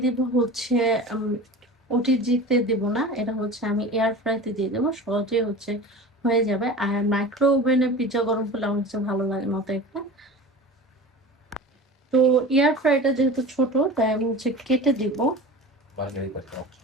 দেব হচ্ছে ওটিজিতে দেব না, এটা হচ্ছে আমি এয়ার ফ্রাইতে দিয়ে দেবো, সহজে হচ্ছে হয়ে যাবে। আর মাইক্রো ওভেনে পিৎজা গরম করলে আমার কাছে ভালো লাগে মতো একটা। তো এয়ার ফ্রাইটা যেহেতু ছোট, তাই আমি হচ্ছে কেটে দিব। মার্গারিতা টক।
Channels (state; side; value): normal; both; correlation 0.35